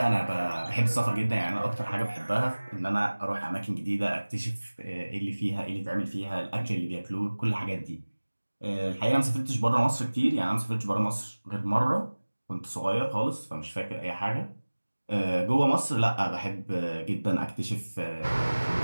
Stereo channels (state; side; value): inverted; both; correlation -1.00